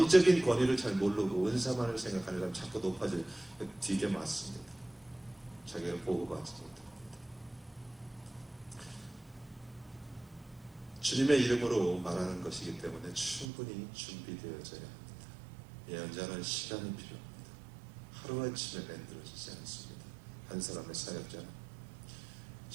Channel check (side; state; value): left; drops out; at 13.5 s